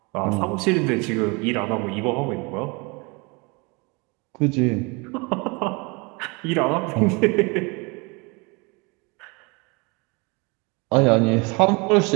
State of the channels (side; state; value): left; quieter; 28.8 dB